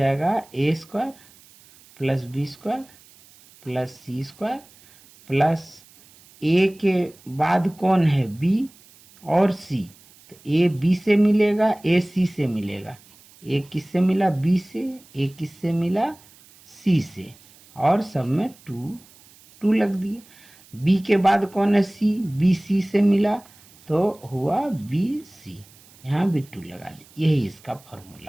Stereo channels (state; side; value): noise; right; hiss, 26 dB below the sound